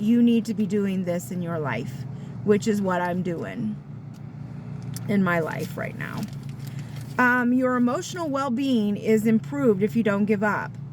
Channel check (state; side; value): identical; both; correlation 1.00